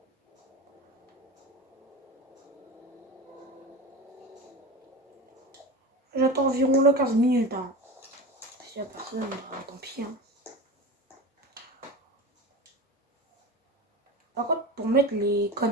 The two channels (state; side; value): normal; both; correlation 0.28